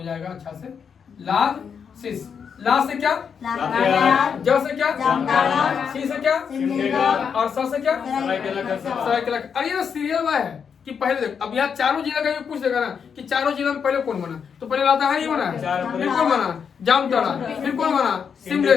जाएगा अच्छा से। लाज सिस। ला से क्या? ज से क्या? सी से क्या? और स से क्या? सरायकेला। अरे ये सीरियल वाला है कि पहले देख, अब यहाँ चारों जिला का ये पूछ देगा ना कि चारों जिला में पहले कौन बना, तो पहले लातेहार ही बना, फिर कौन बना, जामताड़ा, फिर कौन बना,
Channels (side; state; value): right; quieter; 6.8 dB